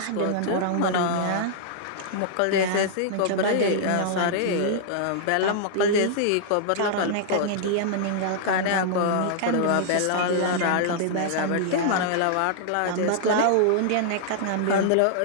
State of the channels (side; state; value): both; different; correlation -0.01